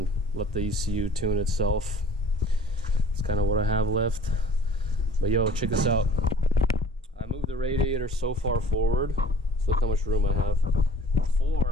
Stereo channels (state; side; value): normal; both; correlation 0.49